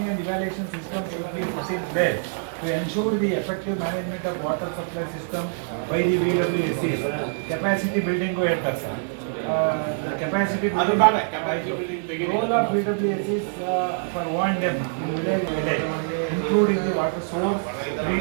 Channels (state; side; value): silent; left; digital silence